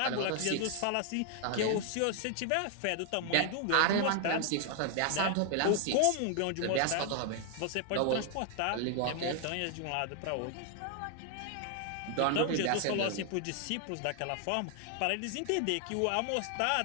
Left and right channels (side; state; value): both; different; correlation 0.00